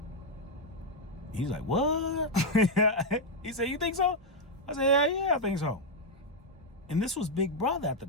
He's like, what? He said, you think so? I said, yeah, I think so. And this was Big Brother at the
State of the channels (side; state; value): both; normal; correlation 0.00